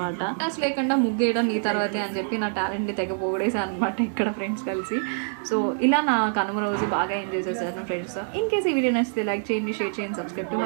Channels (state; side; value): silent; left; 61 dB below the other